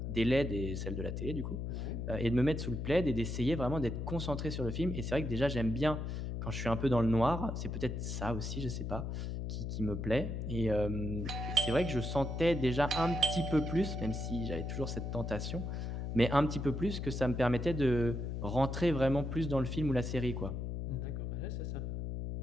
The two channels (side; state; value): left; noise; hum, 4 dB below the sound